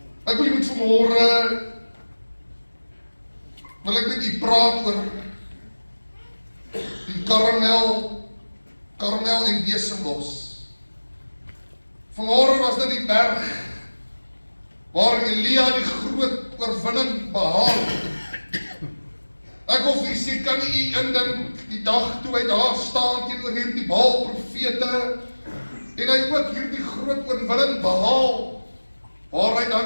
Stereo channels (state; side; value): inverted; both; correlation -1.00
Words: Ek wil jy moet vanmôre wil ek met u praat oor die Karmel en besembos. Vanmôre was dit die berg waar Elia die groot oorwinning behaal. Ek wil vir u sê, kan u indink die dag toe hy daar staan teenoor hierdie Baal profete en hy ook hierdie groot oorwinning behaal, waar hy